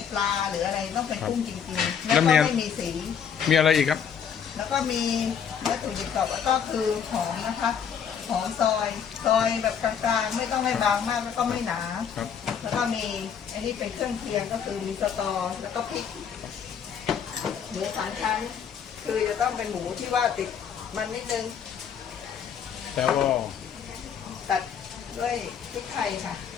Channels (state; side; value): quieter; right; 7.7 dB